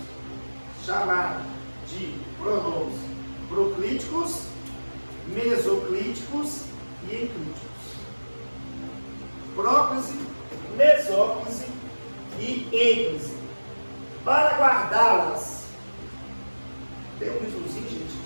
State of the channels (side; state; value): both; inverted; correlation -1.00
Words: chamados de pronomes proclíticos, mesoclíticos e enclíticos. Próclise, mesóclise e ênclise. Para guardá-las, tem um risozinho, gente,